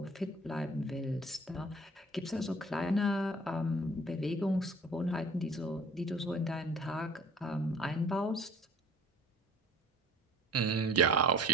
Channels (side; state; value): both; normal; correlation 0.49